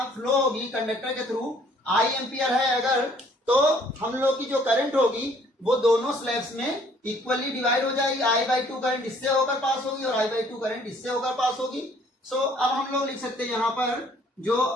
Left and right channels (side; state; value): both; normal; correlation 0.60